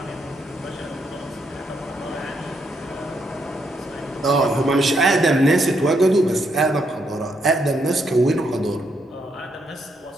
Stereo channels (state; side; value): normal; both; correlation 0.77